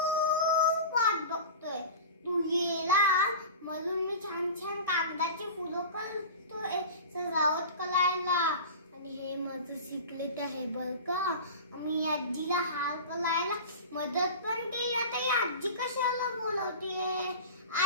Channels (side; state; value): both; inverted; correlation -0.32